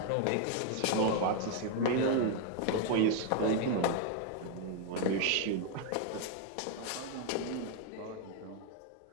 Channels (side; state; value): both; different; correlation 0.00